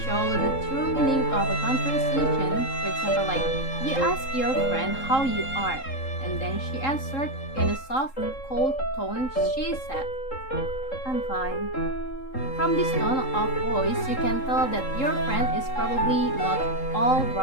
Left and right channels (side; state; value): right; late; 3.7 ms